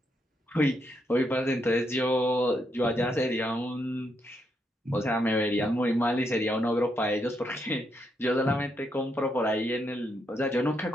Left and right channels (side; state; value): both; normal; correlation 0.79